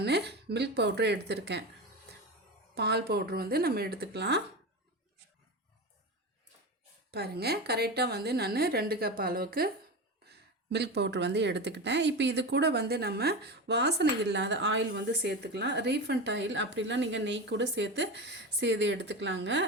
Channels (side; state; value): both; normal; correlation 0.23